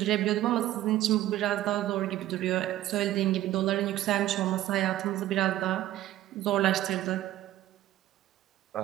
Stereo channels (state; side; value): quieter; left; 14.3 dB